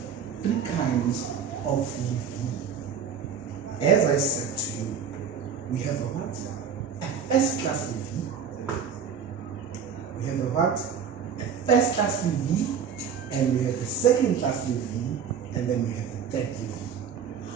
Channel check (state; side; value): quieter; left; 7.1 dB